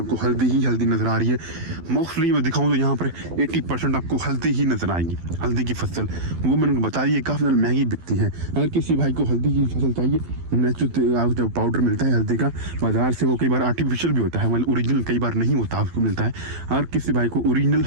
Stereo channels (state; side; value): late; left; 12 ms